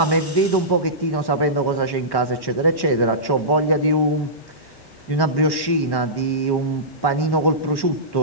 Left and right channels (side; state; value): right; late; 1.1 ms